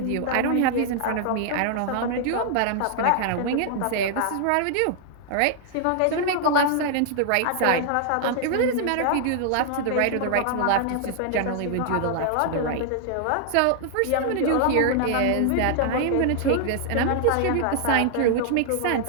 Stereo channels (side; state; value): both; different; correlation 0.00